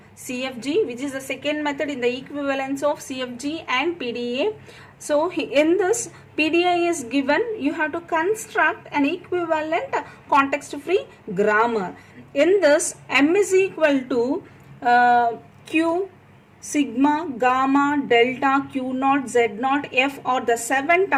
CFG, which is the second method in the equivalence of CFG and PDA. So in this PDA is given, you have to construct an equivalent context free grammar. In this M is equal to Q, sigma, gamma, delta, Q naught, Z naught, F are the 7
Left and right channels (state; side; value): identical; both; correlation 1.00